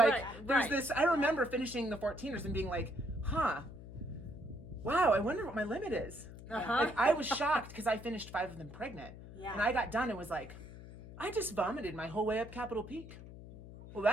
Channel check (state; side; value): noise; left; hum, 15 dB below the sound